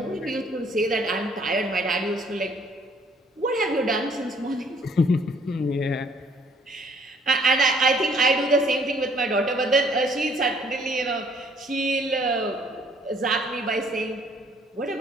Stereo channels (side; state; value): both; normal; correlation 0.61